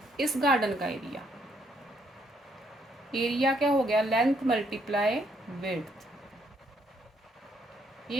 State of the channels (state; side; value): normal; both; correlation 0.71